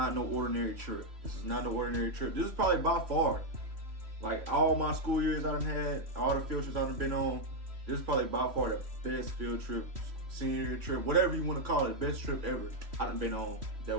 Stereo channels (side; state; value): left; late; 3.1 ms